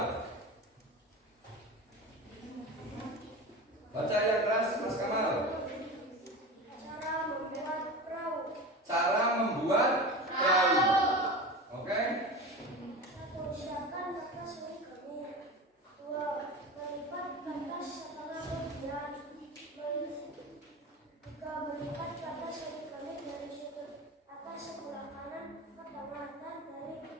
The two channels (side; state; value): both; normal; correlation 0.29